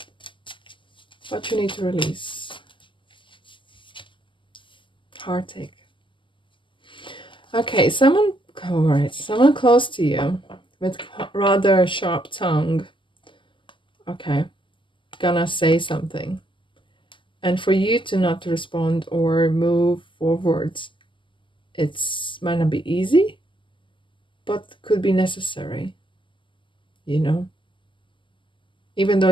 What you need to release. Heartache. Okay, someone close to you with rather sharp tongue. Okay, gonna say something. And for you to not respond or move forwards, might not be easy, but could be necessary. You know? Even though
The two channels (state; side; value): late; right; 0.24 ms